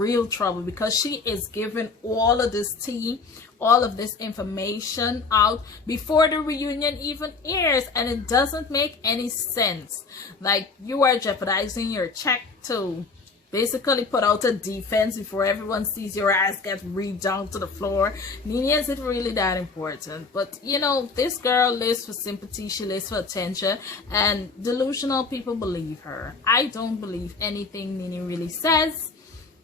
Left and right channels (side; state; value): right; quieter; 4.3 dB